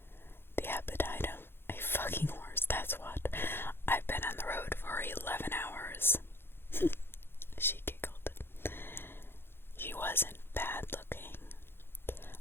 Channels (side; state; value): right; late; 0.11 ms